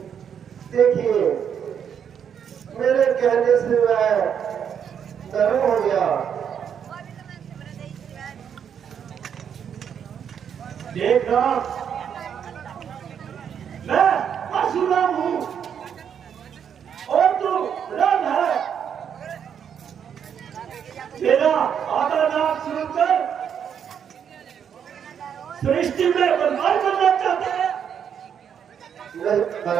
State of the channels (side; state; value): left; quieter; 8.1 dB